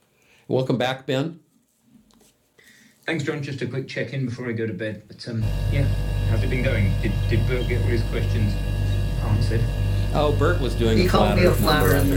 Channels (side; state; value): both; identical; correlation 1.00